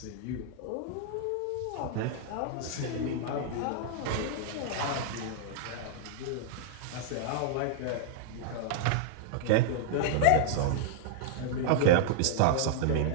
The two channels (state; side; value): different; both; correlation -0.01